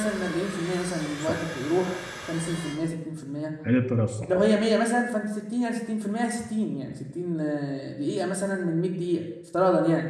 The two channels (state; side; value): identical; both; correlation 1.00